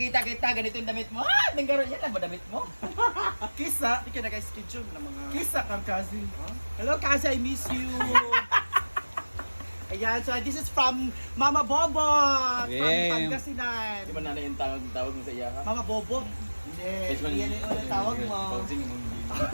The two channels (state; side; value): inverted; both; correlation -1.00